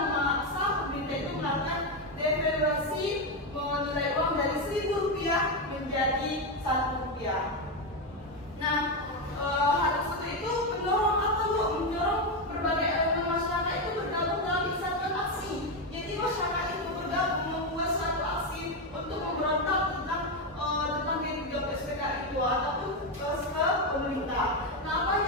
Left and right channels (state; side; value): normal; both; correlation 0.09